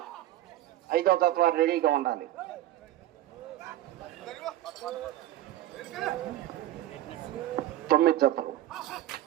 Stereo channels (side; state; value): left; quieter; 14.0 dB